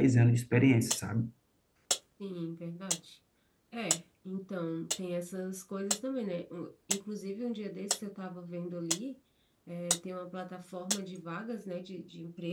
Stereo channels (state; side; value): identical; both; correlation 1.00